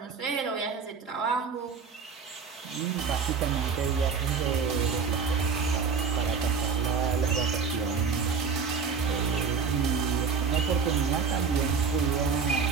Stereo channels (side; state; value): left; quieter; 5.8 dB